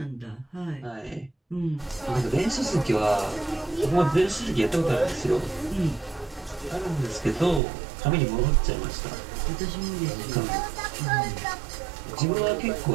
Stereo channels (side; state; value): left; drops out; at 7.6 s